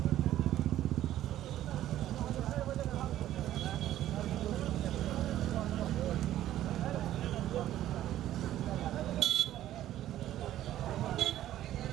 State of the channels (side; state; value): left; quieter; 13.0 dB